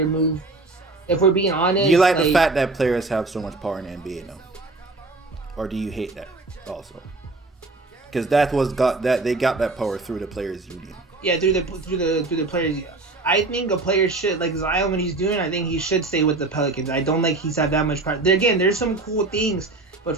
move. If we're being honest, You like the fact that players have so much power in the NBA now, or do you hate that also? Because they got that power through the players' union. Yeah, through the players. I think a player should, like Zion, what he's doing. I think he should stay with the Pelicans. I don't like he's had that much power. Again, there's some cool things, but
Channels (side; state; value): left; quieter; 3.3 dB